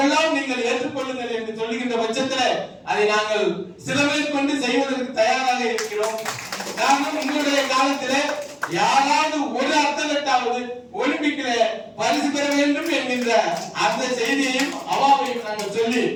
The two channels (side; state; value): both; identical; correlation 1.00